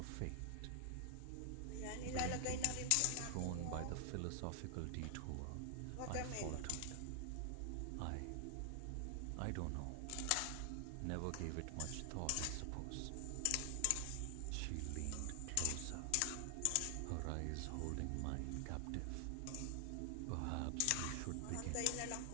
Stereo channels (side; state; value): both; different; correlation 0.00